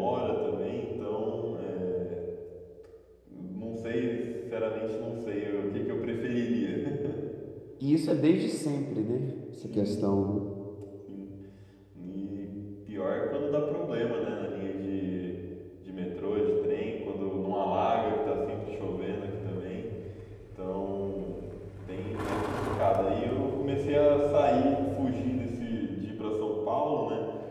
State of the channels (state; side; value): identical; both; correlation 1.00